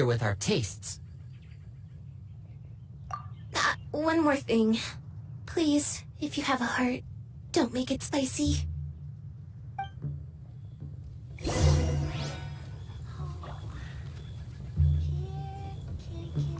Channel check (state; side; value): identical; both; correlation 1.00